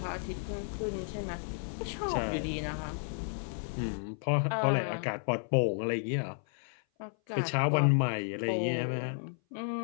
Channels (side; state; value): right; silent; 56 dB below the other